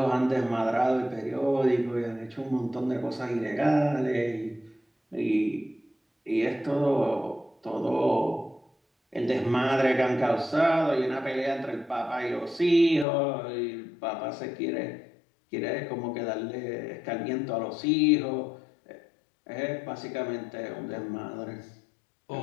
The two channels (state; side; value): drops out; right; at 13.1 s